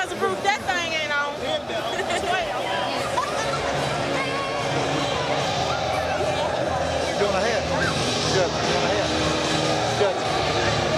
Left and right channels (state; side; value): identical; both; correlation 1.00